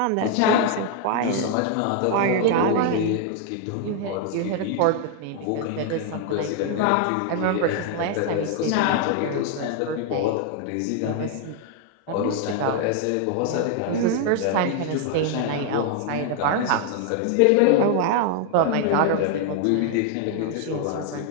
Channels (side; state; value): both; different; correlation 0.00